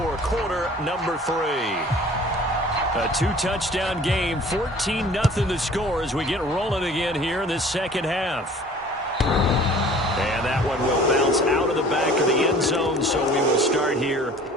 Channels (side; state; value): both; normal; correlation 0.48